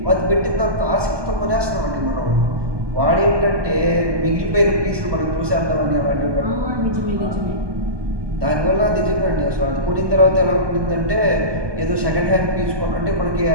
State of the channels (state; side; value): late; left; 1.2 ms